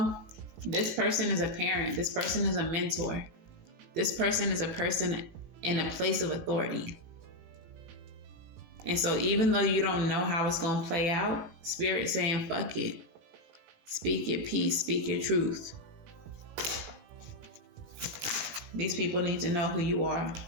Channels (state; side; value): late; left; 17 ms